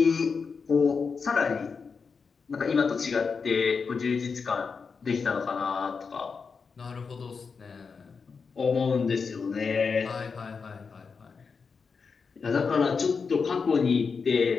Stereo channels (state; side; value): quieter; right; 5.3 dB